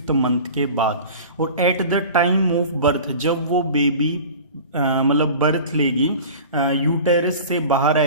मंथ के बाद. और at the time of birth, जब वो बेबी मतलब बर्थ लेगी, यूटेरस से बाहर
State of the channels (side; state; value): both; inverted; correlation -0.38